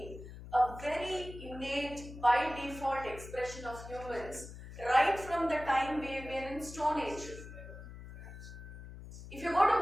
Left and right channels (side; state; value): left; noise; hum, 13 dB below the sound